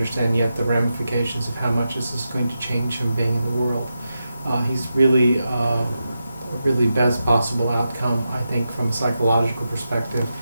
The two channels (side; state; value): both; inverted; correlation -0.89